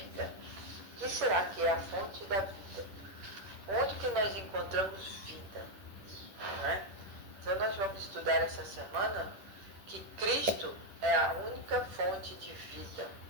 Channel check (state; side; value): late; left; 10 ms